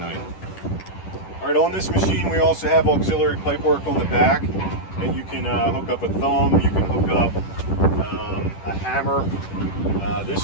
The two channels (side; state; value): right; late; 10 ms